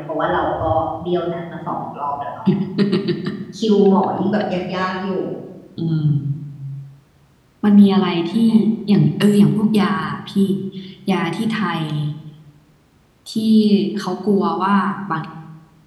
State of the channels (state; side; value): identical; both; correlation 1.00